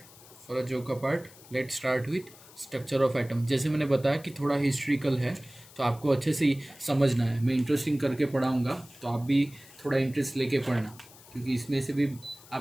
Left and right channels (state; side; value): noise; left; hiss, 22 dB below the sound